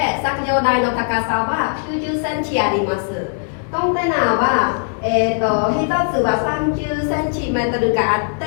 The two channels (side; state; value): right; silent; 67 dB below the other